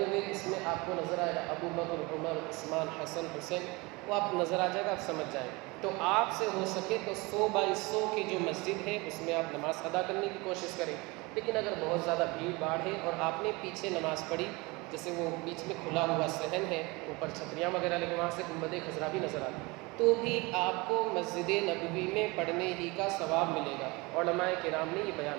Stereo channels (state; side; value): quieter; left; 25.0 dB